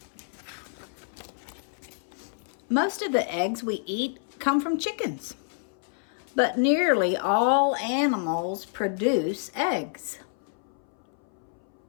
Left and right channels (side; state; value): right; silent; 59 dB below the other